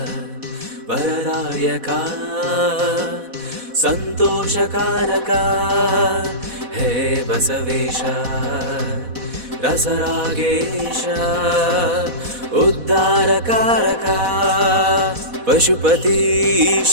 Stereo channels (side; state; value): left; late; 4.1 ms